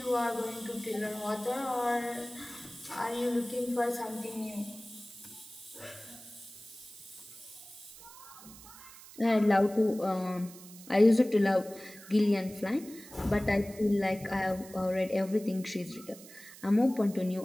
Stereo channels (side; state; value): right; noise; hiss, 18 dB below the sound